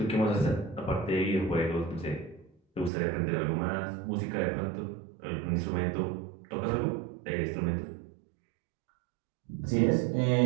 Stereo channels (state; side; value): drops out; left; at 2.9 s